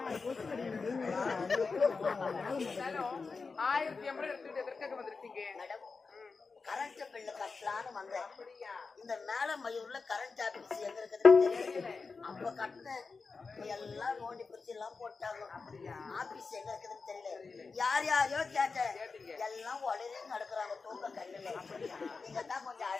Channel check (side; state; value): right; quieter; 4.5 dB